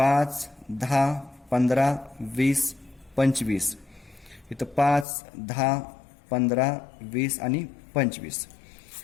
10, 15, 20, 25. इथं 5, 10, 15, 20 आणि 25.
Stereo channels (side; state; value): right; drops out; at 5.1 s